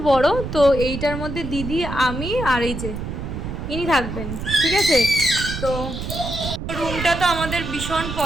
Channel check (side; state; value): right; noise; rumble, 6 dB below the sound